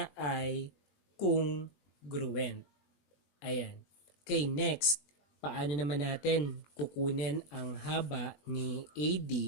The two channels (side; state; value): right; late; 21 ms